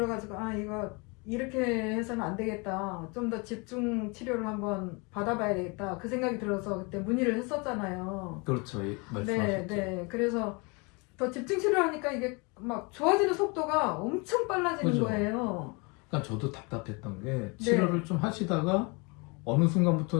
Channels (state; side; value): quieter; right; 29.9 dB